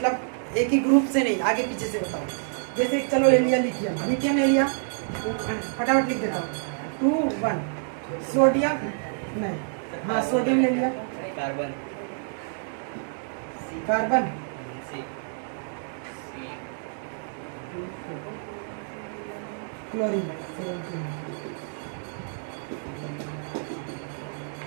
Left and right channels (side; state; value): left; silent; digital silence